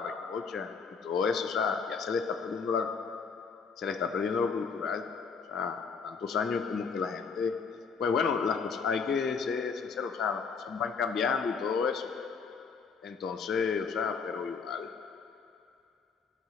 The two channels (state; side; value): quieter; right; 5.5 dB